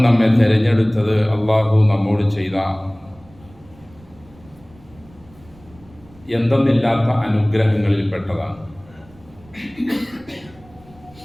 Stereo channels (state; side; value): noise; right; rumble, 25 dB below the sound